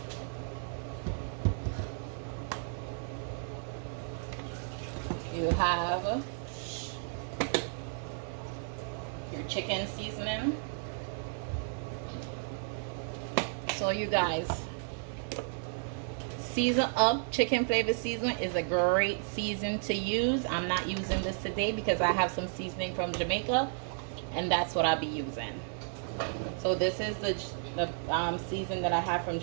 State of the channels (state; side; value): silent; left; digital silence